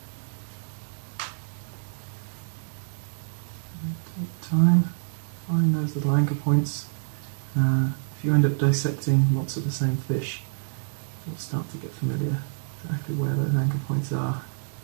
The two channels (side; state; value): left; silent; 60 dB below the other